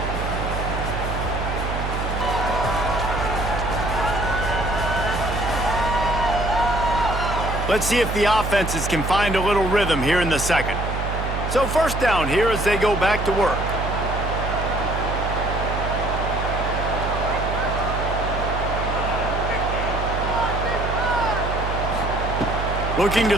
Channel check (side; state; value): right; noise; hum, 3 dB below the sound